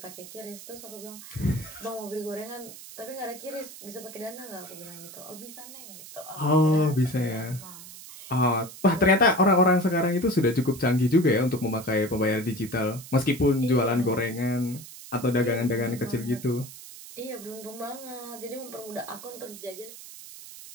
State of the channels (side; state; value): right; noise; hiss, 15 dB below the sound